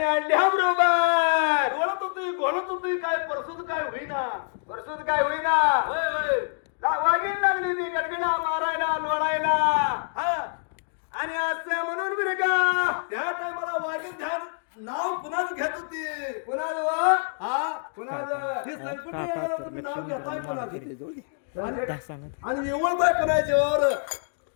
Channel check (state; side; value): silent; right; digital silence